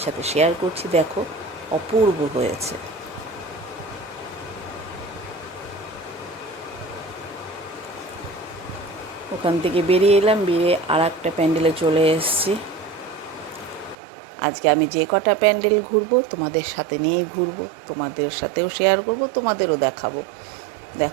সাথে শেয়ার করছি, দেখো অপূর্ব হয়েছে। ওখান থেকে বেরিয়ে এলাম, বেরিয়ে আর একটা প্যান্ডেলে চলে এসেছি। আজকে আমি যে কটা প্যান্ডেল ঘুরবো তোমাদের সাথে নিয়েই ঘুরবো, তোমাদের সাথেও শেয়ার করব, তোমাদেরও দেখাবো।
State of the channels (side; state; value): left; drops out; at 14.0 s